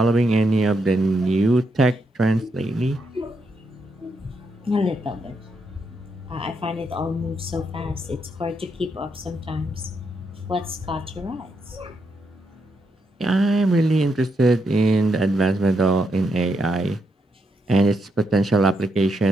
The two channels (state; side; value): normal; both; correlation 0.80